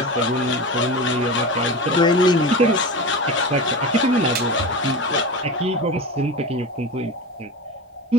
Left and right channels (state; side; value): normal; both; correlation 0.26